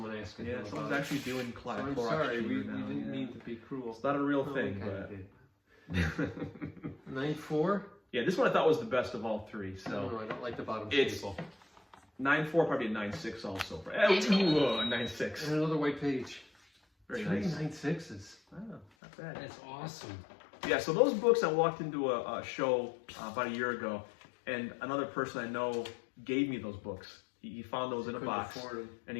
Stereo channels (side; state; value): right; drops out; at 18.9 s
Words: asking him someone's about actually doing it. So I'm Clorox sorry, we chamber now. didn't yeah. mean to be cruel. It's not a real No, thing, we kinda but did. 9.4? yeah, this one I thought was the best of all 3. I don't So know, I don't like the bottom It's- staple. 9.4, probably a 9.6 also. Ooh, a 9.6. And another white page. Very 3 nice. 9.6s. Oh, not bad. That's awesome. Yeah, so those books, I walked into a show about a year ago, and another person I know gave me those books. He found those in a Couldn't box, afford 'em. and